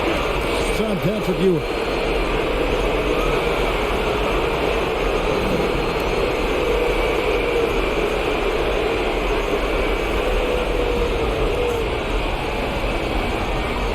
It's on Patrick Ewing.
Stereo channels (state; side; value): identical; both; correlation 1.00